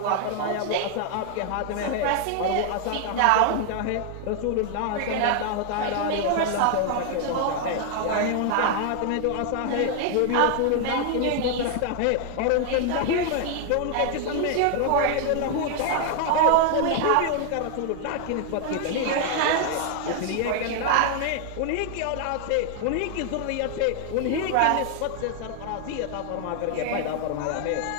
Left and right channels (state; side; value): different; both; correlation 0.00